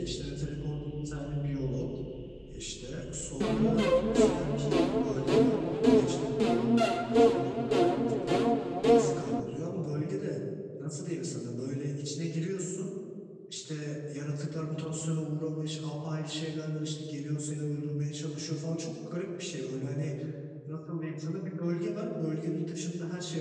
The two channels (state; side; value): identical; both; correlation 1.00